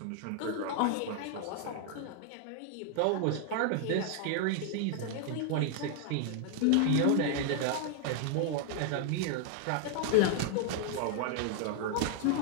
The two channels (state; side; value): different; both; correlation 0.00